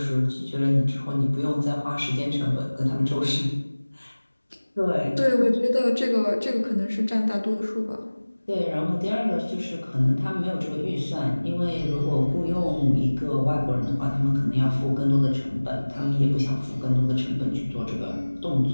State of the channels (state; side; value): inverted; both; correlation -1.00